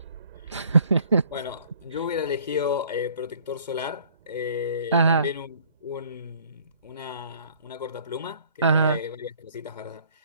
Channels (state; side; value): inverted; both; correlation -0.55